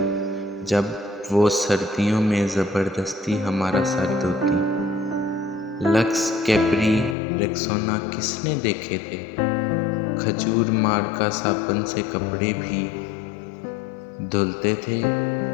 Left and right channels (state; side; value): drops out; right; at 7.2 s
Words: जब वो सर्दियों में ज़बरदस्ती हमारा सर धोती। लक्स, कैप्री, रेक्सोना किसने देखे थे। खजूर मार का साबुन से कपड़े भी धुलते थे